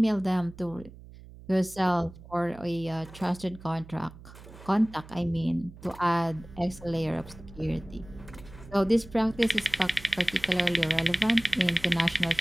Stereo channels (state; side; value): noise; right; hum, 18 dB below the sound